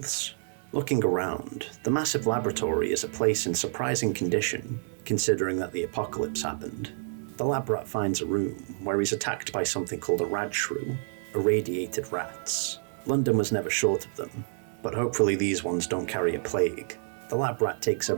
Looking around, the massive laboratory is a place in surprising condition, considering that the apocalypse happened. The lab rat finds a room where he's attacked by something called a radshrew, irradiated rats. London was never short of them, but hopefully these ones don't carry a plague. The lab rat takes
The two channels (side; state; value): left; silent; digital silence